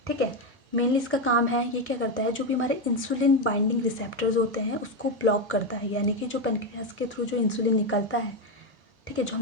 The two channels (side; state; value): both; normal; correlation 0.09